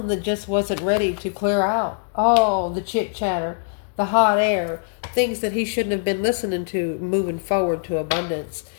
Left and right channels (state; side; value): silent; right; digital silence